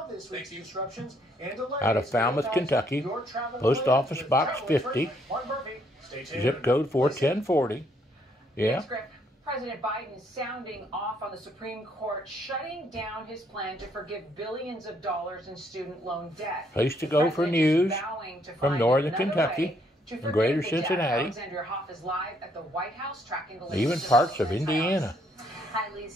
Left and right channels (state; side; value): normal; both; correlation 0.70